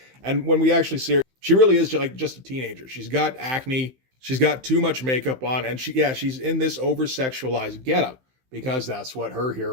And when we actually see her, she really is just a teenager. She's got acne, she's got too much makeup on, and she's in this over-sexualized getup, because that's what her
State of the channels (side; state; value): left; late; 15 ms